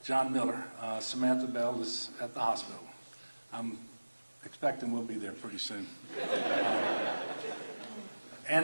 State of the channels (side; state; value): both; inverted; correlation -1.00